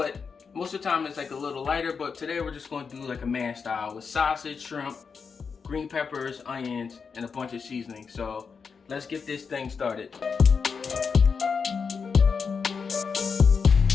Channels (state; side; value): quieter; right; 5.6 dB